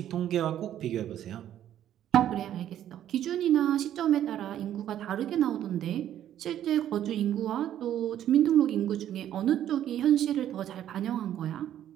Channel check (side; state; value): left; quieter; 11.2 dB